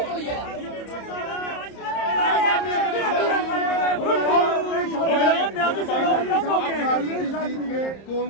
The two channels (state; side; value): late; right; 30 ms